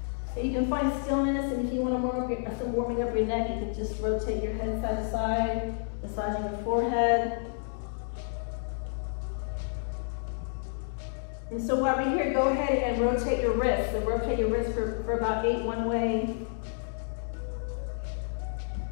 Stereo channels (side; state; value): right; silent; digital silence